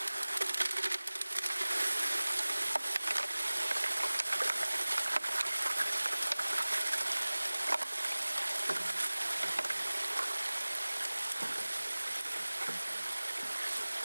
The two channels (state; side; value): inverted; both; correlation -1.00